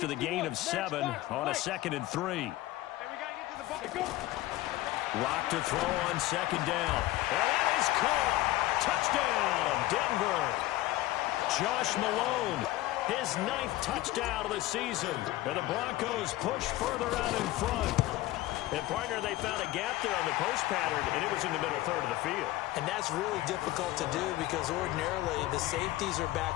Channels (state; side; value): quieter; right; 17.0 dB